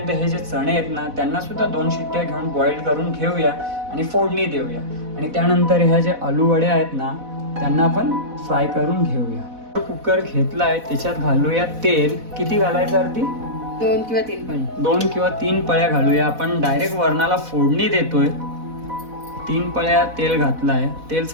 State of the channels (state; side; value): late; left; 4.1 ms